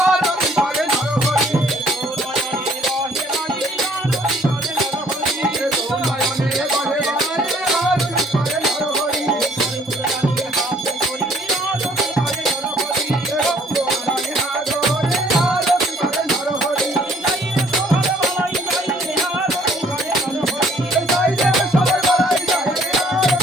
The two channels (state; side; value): normal; both; correlation 0.60